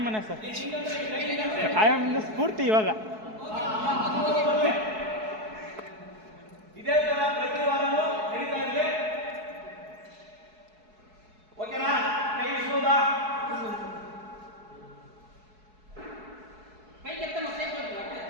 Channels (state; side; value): late; left; 4.7 ms